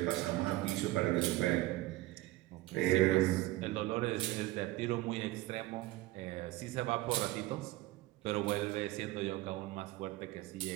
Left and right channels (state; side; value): quieter; left; 17.8 dB